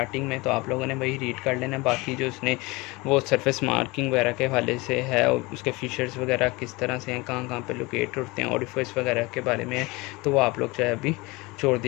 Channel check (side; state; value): right; quieter; 24.0 dB